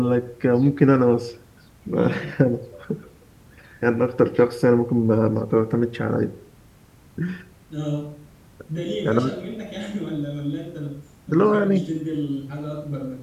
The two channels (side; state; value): both; identical; correlation 1.00